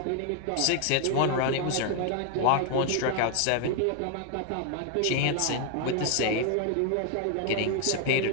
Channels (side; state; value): both; different; correlation 0.00